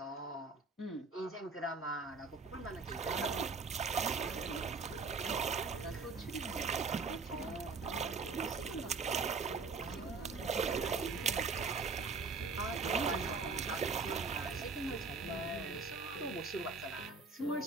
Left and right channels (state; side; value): quieter; left; 4.3 dB